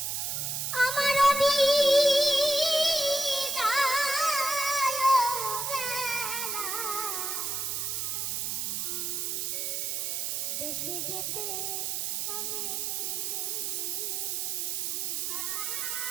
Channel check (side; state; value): right; noise; hiss, 1 dB below the sound